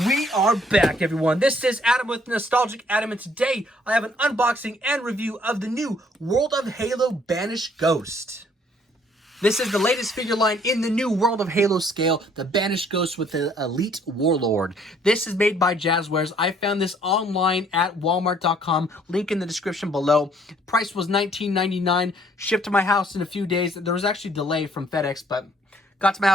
we are back, everyone. This is Adam with Nostalgic Adam, and today I have an unboxing and review of the new World of Halo Banished Ghost. This is the latest figure line in the new World of Halo scale, the Banished Ghost with the Elite Warlord. This is made by Jazzwares. I found this online at walmart.com, link in the description below. Price was $19.99, shipped to my house in a few days. There was actually a delay from FedEx, but got to my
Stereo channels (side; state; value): both; normal; correlation 0.62